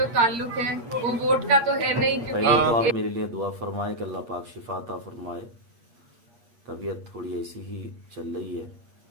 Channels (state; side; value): late; left; 8.5 ms